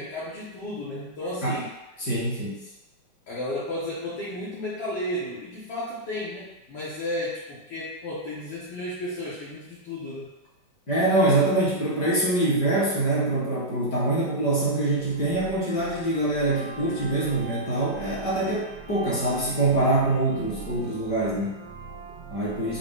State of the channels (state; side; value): late; right; 5.0 ms